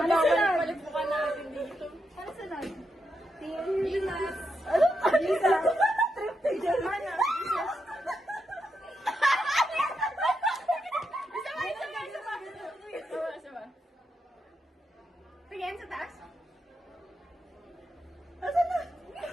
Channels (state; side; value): normal; both; correlation 0.84